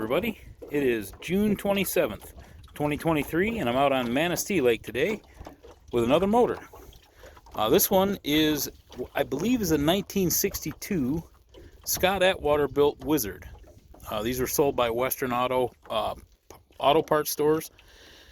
it is June 27th, 2023, and I'm out on Manistee Lake today with another motor. This one is, I believe, is a 1962 Scott-Atwater built Wizard. These were sold by Western auto parts stores,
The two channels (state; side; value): identical; both; correlation 1.00